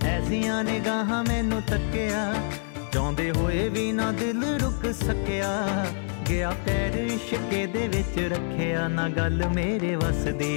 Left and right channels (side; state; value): right; silent; 60 dB below the other